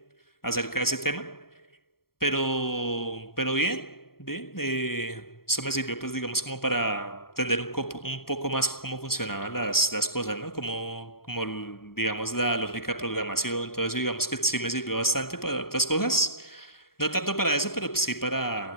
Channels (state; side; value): late; right; 0.93 ms